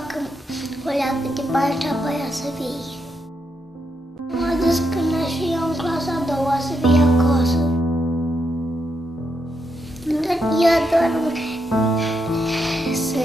o leacă de bani și apoi să vii. M-a dus când aș fi eu în clasa a doua să vii acasă. Dar ea dorm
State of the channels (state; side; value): normal; both; correlation 0.81